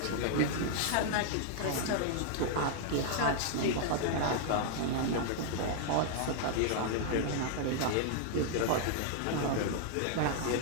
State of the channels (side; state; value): both; different; correlation 0.00